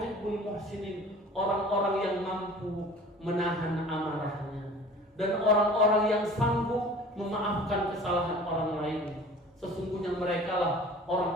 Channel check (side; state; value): both; normal; correlation 0.44